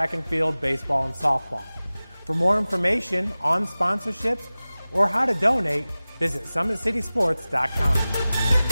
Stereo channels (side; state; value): both; inverted; correlation -0.98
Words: and field, baseball, and softball. For more information on sponsorships or how to donate, visit SummitCitySports.com.